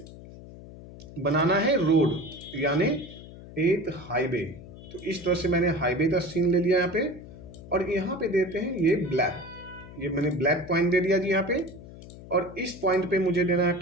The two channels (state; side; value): noise; left; hum, 16 dB below the sound